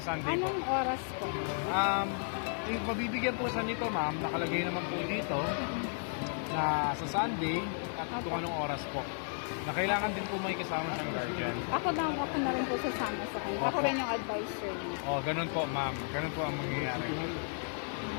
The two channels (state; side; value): silent; right; 55 dB below the other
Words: Sunday po. Anong oras po? Mabibigyan po sa nito ma'am, nakalagay naman po dito na sa Sunday at kung anong oras po. Na kailangan din po may kasama siyang guardian. Ako na rin po sasama sa kanya. Ako Opo. rin yung advisor niya. Oh, ganun po ma'am. Ganun po ang mangyayari.